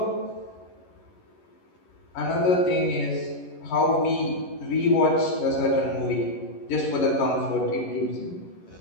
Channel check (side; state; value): right; late; 11 ms